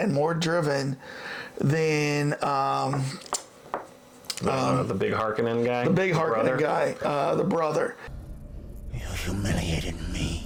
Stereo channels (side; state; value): both; identical; correlation 1.00